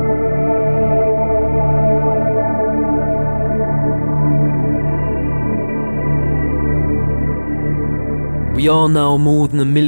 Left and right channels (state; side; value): inverted; both; correlation -1.00